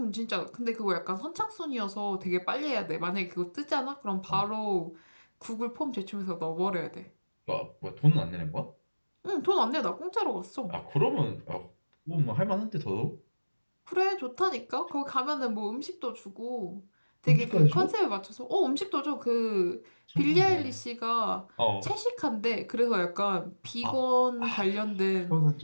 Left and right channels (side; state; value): both; inverted; correlation -1.00